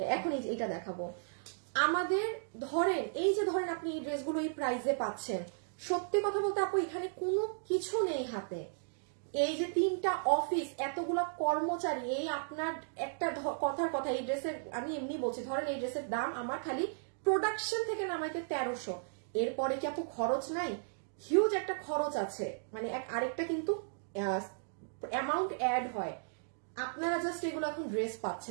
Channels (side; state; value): left; silent; digital silence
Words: এখন এটা দেখাবো আমাদের, ধরেন এই যে ধরেন আপনি এই ড্রেসগুলো এই প্রাইসে পাচ্ছেন, সত্যি কথা বলতে আপু এখানে কোনো কিছু নেই হাতে। এই যে 3টা অফিস, এতগুলা কর্মচারী, এই আপনার একটা কথার কথা, এই ড্রেসের আমি এমনি বলছি, ধরেন এই ড্রেসের দাম আমার খালি প্রোডাকশন থেকে নামাইতে 1300, এরপরে কি আপু খরচ নাই? হিউজ একটা খরচ আছে, মানে আরেকটা কিন্তু অ্যামাউন্ট অ্যাড হয়। আপনারা জাস্ট এগুলো এখন ড্রেস